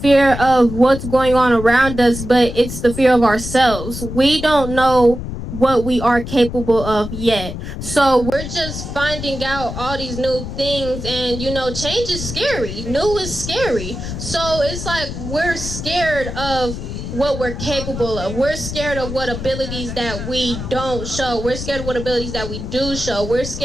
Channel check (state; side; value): noise; left; rumble, 7 dB below the sound